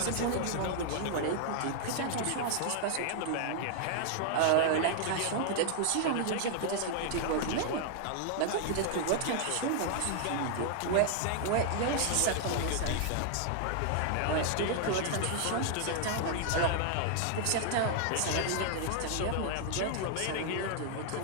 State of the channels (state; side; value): different; both; correlation 0.00